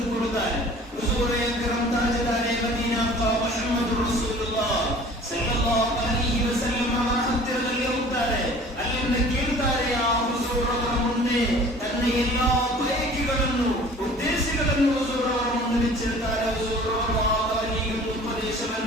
ಹುಜೂರ್ ಅಕ್ರಮ್ ತಾಜದಾರೆ ಮದೀನಾ ಮುಹಮ್ಮದ್ ರಸೂಲುಲ್ಲಾಹ್ ಸಲ್ಲಲ್ಲಾಹು ಅಲೈಹಿ ವಸಲ್ಲಂ ಅವರ ಹತ್ತಿರದಲ್ಲಿ ಹೋಗ್ತಾರೆ. ಅಲ್ಲಿಂದ ಕೇಳ್ತಾರೆ, ಆ ಹುಜೂರ್ ಅವರ ಮುಂದೆ ತನ್ನ ಎಲ್ಲಾ ಬಯಕೆಗಳನ್ನು ಉದ್ದೇಶಗಳನ್ನು ಹುಜೂರ್ ಅವರ ಮುಂದೆ ಬಿಚ್ಚಿರ್ತಾರೆ. ಹುಜೂರ್ ಅವರಿಗೆ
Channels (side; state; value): both; normal; correlation 0.47